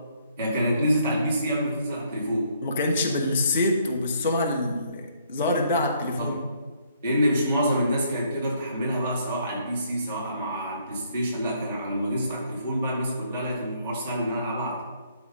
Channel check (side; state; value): both; inverted; correlation -0.68